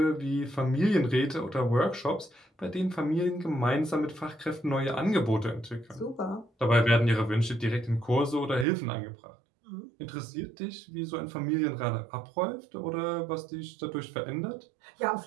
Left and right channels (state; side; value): drops out; left; at 8.7 s